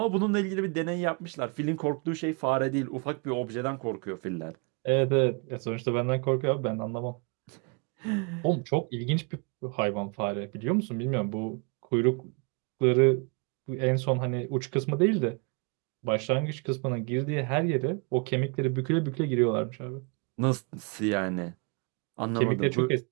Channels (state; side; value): quieter; left; 34.7 dB